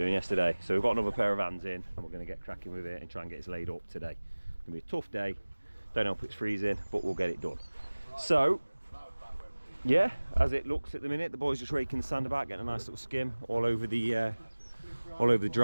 yesterday. So we've got another pair of hands in and we're going to get cracking with it and try and get it laid up today. It's going to be a tough day, don't know if it's freezing, but we'll get it done. So yeah, as it looks at the minute, the boys just raking the sand about, getting a nice little skim all over the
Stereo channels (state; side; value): inverted; both; correlation -1.00